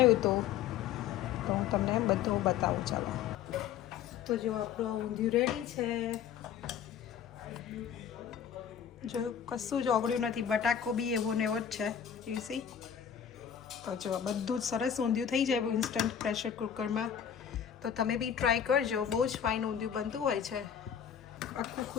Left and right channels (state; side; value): quieter; right; 8.7 dB